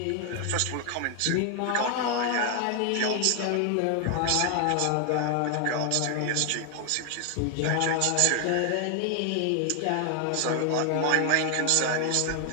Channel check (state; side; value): different; both; correlation 0.00